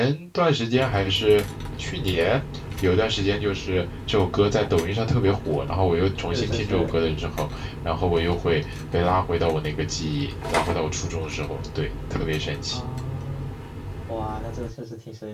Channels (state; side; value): identical; both; correlation 1.00